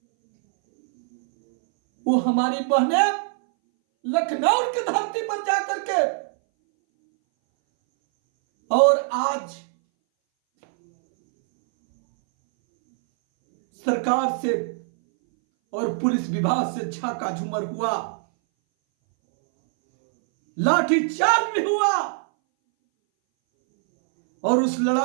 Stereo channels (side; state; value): left; silent; 61 dB below the other